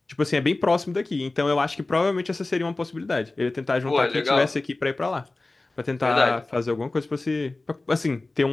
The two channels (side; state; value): right; quieter; 3.1 dB